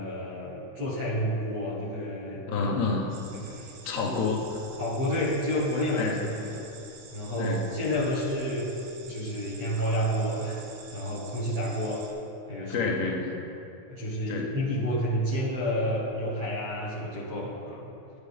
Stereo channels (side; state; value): left; late; 16 ms